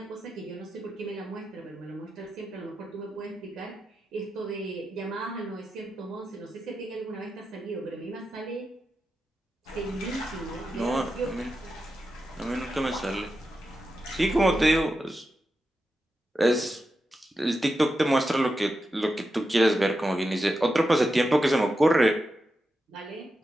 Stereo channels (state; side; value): normal; both; correlation 0.89